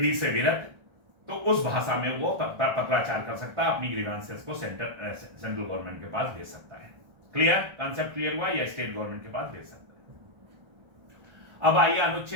से विरत, तो उस भाषा में वो पत्राचार कर सकता है, अपनी ग्रीवांसेस को सेंट्रल गवर्नमेंट के पास भेज सकता है। क्लियर? कंसेप्ट क्लियर हुआ? या स्टेट गवर्नमेंट के पास भेज सकता है। अब आइए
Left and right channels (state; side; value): late; left; 1.4 ms